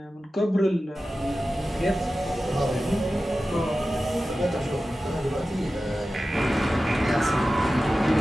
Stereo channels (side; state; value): both; normal; correlation 0.94